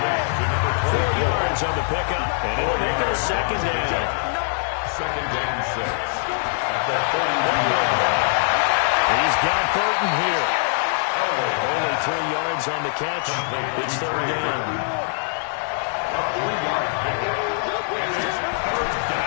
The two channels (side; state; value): right; silent; digital silence